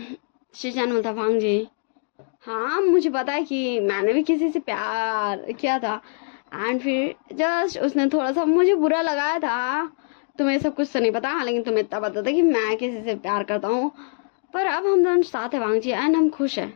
शीशान बोलता, भांग जी हाँ मुझे पता है कि मैंने भी किसी से प्यार किया था, एंड फिर जस्ट उसने थोड़ा सा मुझे बुरा लगाया था। तुम्हें सब कुछ तो नहीं पता, लेकिन तुम्हें इतना पता था कि मैं किसी से प्यार करता हूँ। पर अब हम दोनों साथ हैं वांग जी, एंड हम खुश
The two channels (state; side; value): silent; right; 63 dB below the other